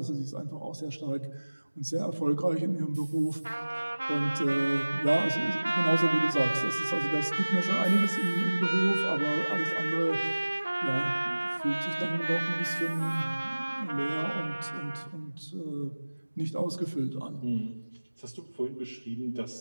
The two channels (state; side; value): inverted; both; correlation -1.00